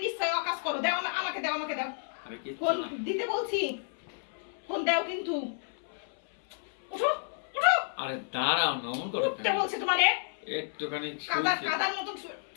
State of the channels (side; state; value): right; silent; 57 dB below the other